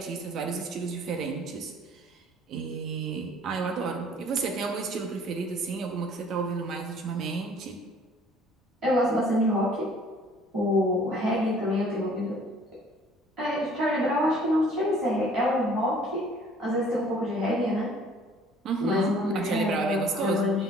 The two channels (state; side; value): normal; both; correlation 0.55